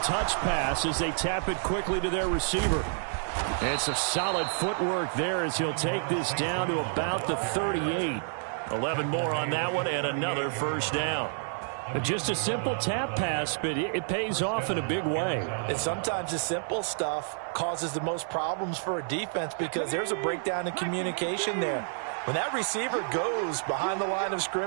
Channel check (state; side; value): silent; left; 58 dB below the other